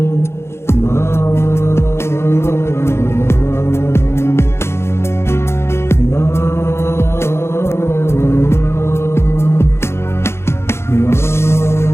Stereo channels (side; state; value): right; late; 0.12 ms